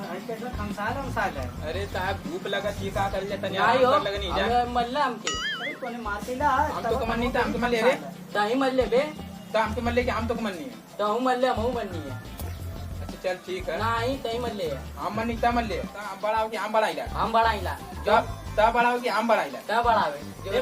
आई कैसा खमसाल है। अरे साहब धूप लगा चीका कर लेता नहीं आई हो लगा नहीं जा। अबे मल्ला हमके। अरे तूने मार देला। हम तो कमन नहीं था, हम तो मल्ले रे। ताही मल्ले बे। तो हम तो मल्ले के हम तो कमन नहीं है। तो हूं मल्ले हम मन्नी है। अच्छा चल ठीक है। नहीं तही मल्ले है। हम मन नहीं था मल्ले। हम बड़ा हो के हम बड़ा इला। हम बढ़ाइला। तब बड़ा हो के हम बड़ा इला। क्या बढ़ावे? ए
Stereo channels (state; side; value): identical; both; correlation 1.00